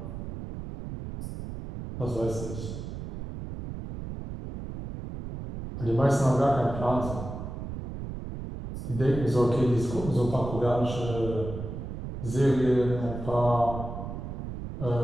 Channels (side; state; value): right; noise; rumble, 8 dB below the sound